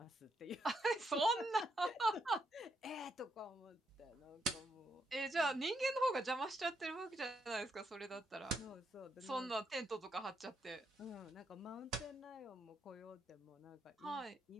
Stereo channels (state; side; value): normal; both; correlation 0.78